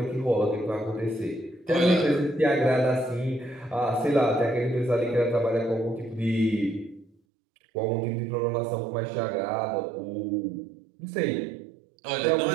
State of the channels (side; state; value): left; drops out; at 7.1 s